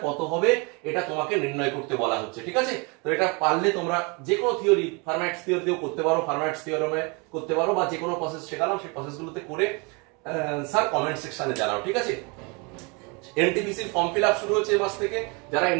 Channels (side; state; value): left; quieter; 30.7 dB